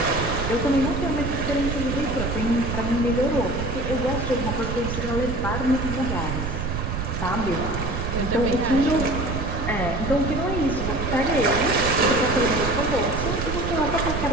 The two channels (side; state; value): right; noise; rumble, 3 dB below the sound